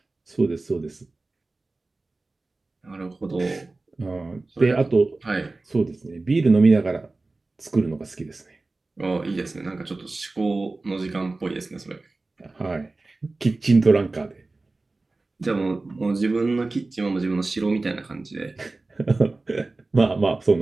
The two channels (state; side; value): quieter; left; 3.3 dB